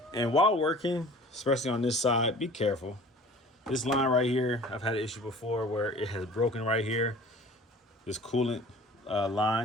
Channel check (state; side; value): normal; both; correlation 0.45